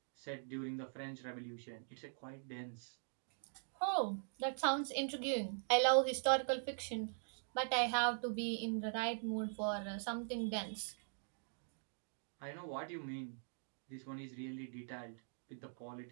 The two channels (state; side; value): silent; left; digital silence